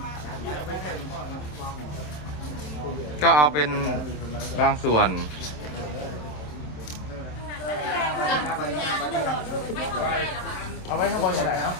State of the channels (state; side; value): late; right; 27 ms